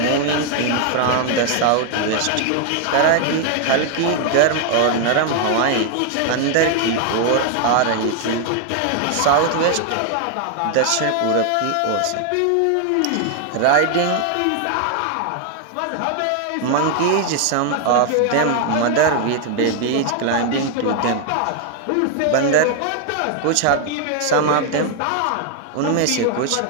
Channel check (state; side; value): different; both; correlation 0.00